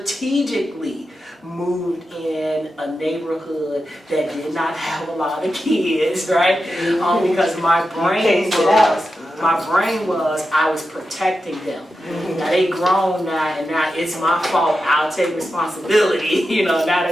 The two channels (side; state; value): both; normal; correlation 0.90